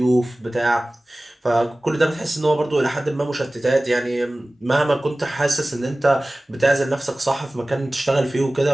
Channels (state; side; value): normal; both; correlation 0.98